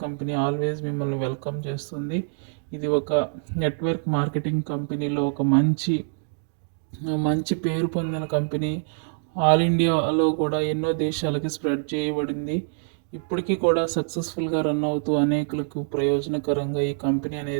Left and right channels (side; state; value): left; silent; digital silence